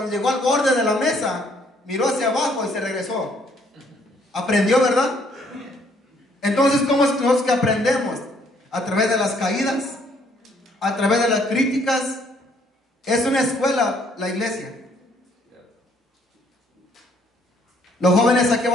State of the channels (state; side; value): normal; both; correlation 0.65